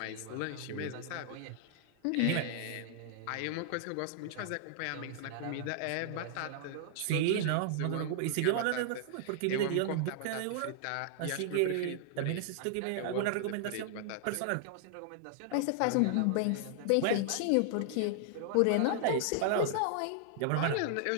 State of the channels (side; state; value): both; different; correlation -0.01